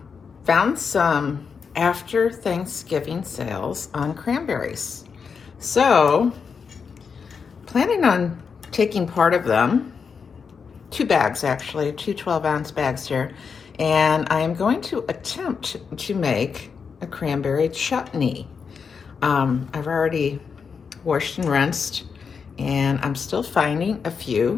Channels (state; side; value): quieter; right; 5.9 dB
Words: some after Thanksgiving sales on cranberries. So, planning on taking part of them, 2 bags actually, two 12-ounce bags here, and I am going to attempt to make a cranberry chutney. I've already washed and rinsed, and I'm still finding a